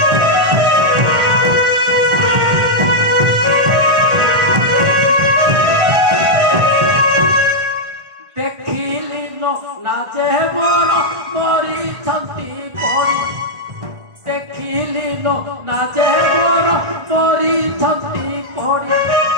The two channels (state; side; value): late; left; 1.4 ms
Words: নাচে বড় মরিছন্তি পড়ি দেখিলি নাচে বড় মরিছন্তি পড়ি